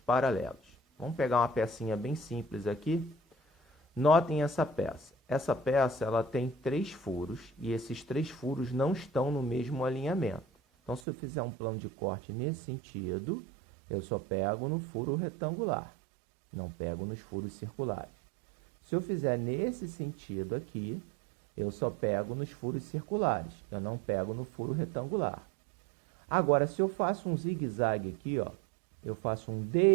Vamos pegar uma pecinha bem simples aqui. Notem essa peça. Essa peça ela tem 3 furos e esses 3 furos não estão no mesmo alinhamento. Então, se eu fizer um plano de corte nesse sentido, eu só pego no furo retangular, não pego nos furos circulares. Se eu fizer nesse sentido aqui, eu só pego nos furos circulares, eu não pego no furo retangular. Agora, se eu faço um zigue-zague aqui, ó, eu faço um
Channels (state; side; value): drops out; left; at 11.0 s